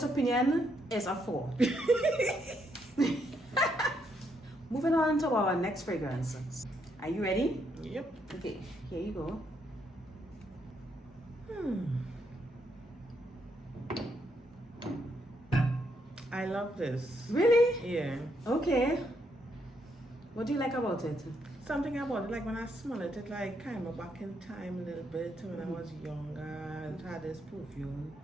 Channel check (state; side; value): normal; both; correlation 0.76